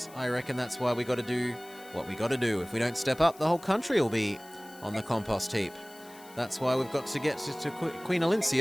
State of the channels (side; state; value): left; noise; hiss, 21 dB below the sound